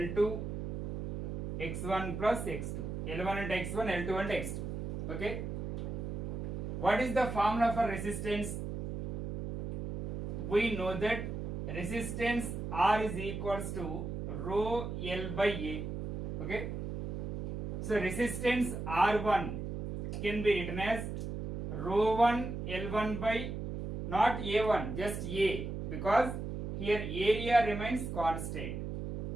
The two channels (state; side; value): noise; right; hum, 5 dB below the sound